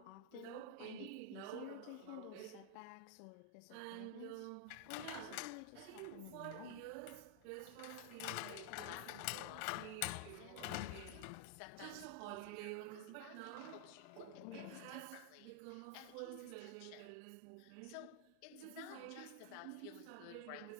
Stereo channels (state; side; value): different; both; correlation 0.00